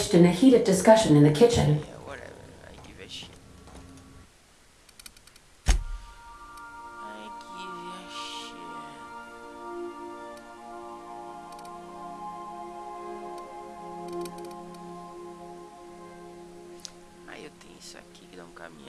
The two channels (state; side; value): identical; both; correlation 1.00